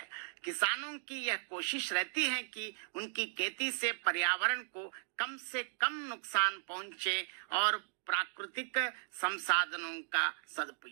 किसानों की यह कोशिश रहती है कि उनकी खेती से पर्यावरण को कम से कम नुकसान पहुंचे और प्राकृतिक संसाधनों का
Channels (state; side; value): silent; left; digital silence